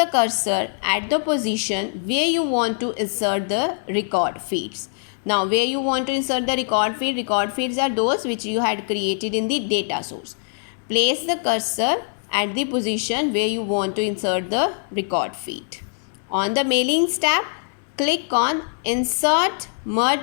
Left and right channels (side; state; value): right; silent; 63 dB below the other